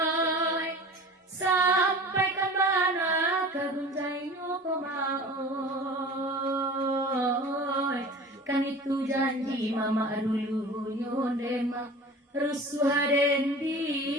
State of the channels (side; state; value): both; normal; correlation 0.39